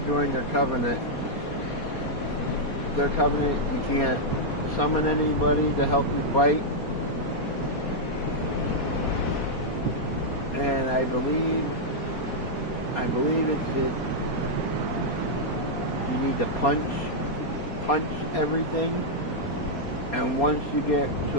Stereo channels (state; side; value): late; right; 4.3 ms